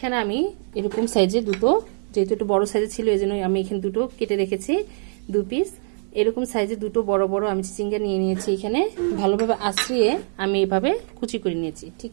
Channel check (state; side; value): silent; left; 61 dB below the other